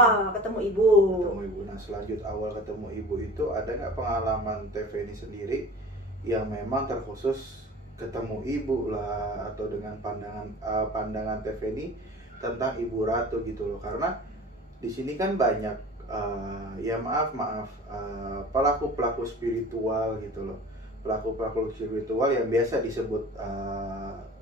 ketemu Ibu. Ketemu Ibu. Nah, selanjut awal ketemu Ibu itu ada nggak pengalaman TV ini sendiri yang memang terkhusus ketemu Ibu lah, atau dengan pandangan TV ini tentang Ibu Ratu gitu loh? Karena di sini kan banyak pelaku-pelaku spiritual gitu loh, pelaku-pelaku spiritual yang biasa disebut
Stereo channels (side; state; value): both; normal; correlation 0.40